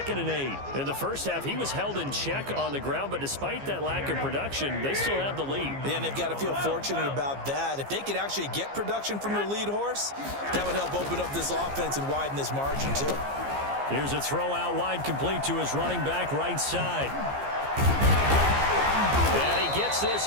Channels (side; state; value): left; late; 15 ms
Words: and 8. In the first half, he was held in check on the ground, but despite that lack of production, they still have the lead. And they've got to feel fortunate about that. If they could actually get production from their lead horse, that would help open up this offense and widen this margin too. Here's a throw out wide, complete to his running back right side. And he gets this